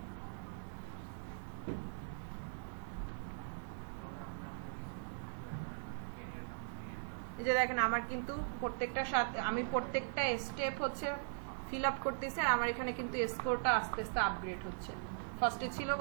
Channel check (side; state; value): left; silent; digital silence